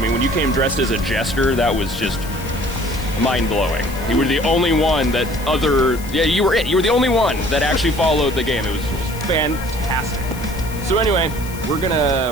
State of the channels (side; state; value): left; noise; hiss, 16 dB below the sound